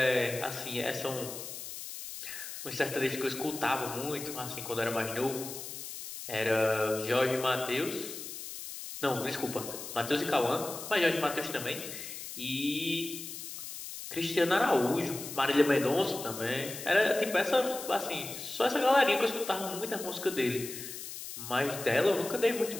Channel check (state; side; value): noise; left; hiss, 9 dB below the sound